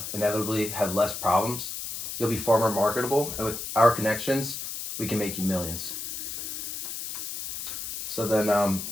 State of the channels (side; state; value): left; noise; hiss, 6 dB below the sound